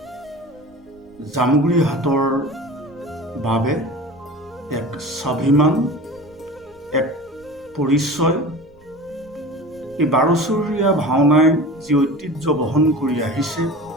জামুগুৰি হাটৰ বাবে এক স্বাভিমান, এক পৰিচয়। এই বাৰেচহৰীয়া ভাওনাই যি ঐতিহ্য বহন কৰি আহিছে,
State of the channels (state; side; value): noise; left; rumble, 29 dB below the sound